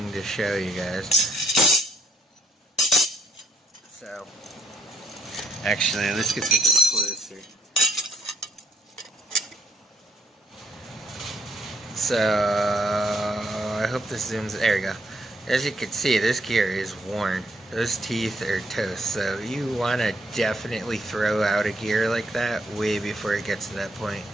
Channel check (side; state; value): both; normal; correlation 0.70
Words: to show you guys. So, actually, let's get something closer. So, I hope this zooms. There we go. As you can see, this gear is worn. Those teeth are toast. So, you want to definitely throw out a gear like that way before it gets to that point.